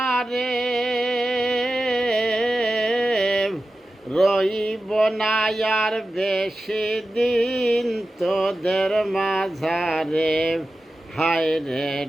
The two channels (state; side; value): normal; both; correlation 0.93